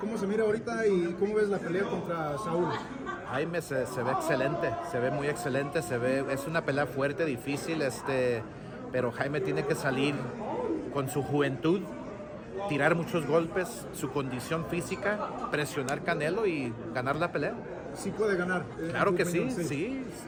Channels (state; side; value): identical; both; correlation 1.00